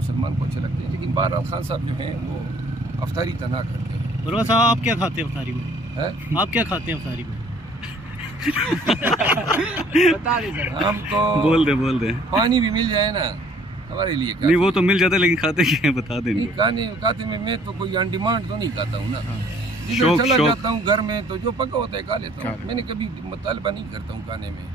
को अच्छे लगते हैं, लेकिन बहरहाल खान साहब जो हैं वो अफ्तारी तना करते हैं। बुरवा साहब आप क्या खाते हैं अफ्तारी में? आप क्या खाते हैं अफ्तारी में? हम तो बोल दे पानी भी मिल जाए ना हमारे लिए नहीं, वो तो मिल जाता है, लेकिन खाते क्या है बता दें। खाते में मैं तो कोई ऑन डिमांड तो नहीं खाता हूँ ना, शौक चला जाता हूँ घर में तो जो पका होता है खा लेता हूँ। मैंने कभी मुतालबा नहीं करता हूँ खाने में,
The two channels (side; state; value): both; normal; correlation 0.58